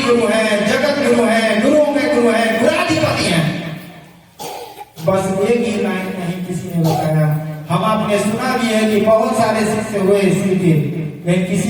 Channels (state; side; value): identical; both; correlation 1.00